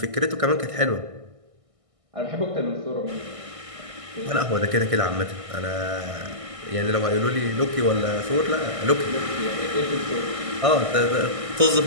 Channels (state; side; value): late; left; 1.6 ms